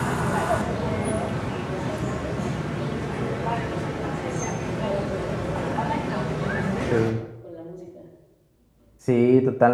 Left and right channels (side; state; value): both; identical; correlation 1.00